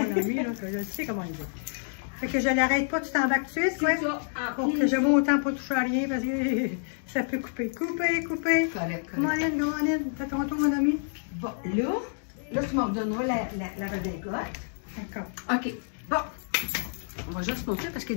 ami, là, que je sais comment le dire. Fait que je l'arrête pas, tu t'embarques tout de suite, quoi. Pour que je vois autant pas toucher à rien, parce que ça peut couper. Couper. Correct. Come on in. Fais ton tour, mon ami. Bon, là, tu m'en redonneras la redingote. D'accord. OK. Bon. On va juste montrer parce qu'il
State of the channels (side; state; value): right; silent; digital silence